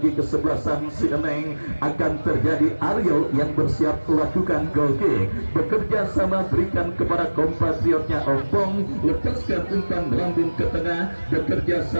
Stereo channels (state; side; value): inverted; both; correlation -1.00